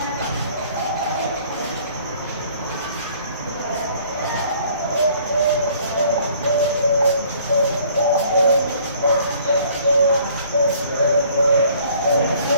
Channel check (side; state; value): both; inverted; correlation -0.57